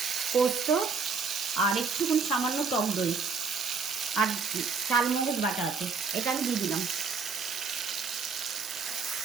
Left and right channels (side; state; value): left; quieter; 5.1 dB